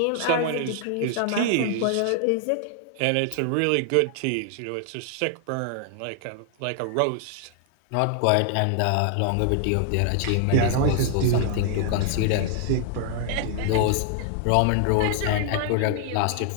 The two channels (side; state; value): both; different; correlation 0.00